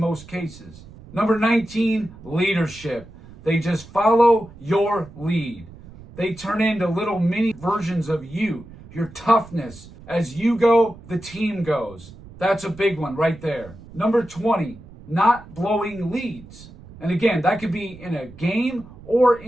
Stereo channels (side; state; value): right; noise; rumble, 19 dB below the sound